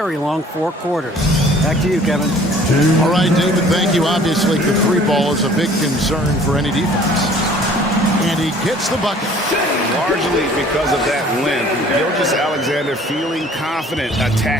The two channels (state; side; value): normal; both; correlation 0.53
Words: long 4 quarters. Back to you, Kevin. All right, David, thank you. Obviously, the 3 ball is a big concern for any defense. And he gets the bucket. Largely because of that length, Gilgeous-Alexander feeling confident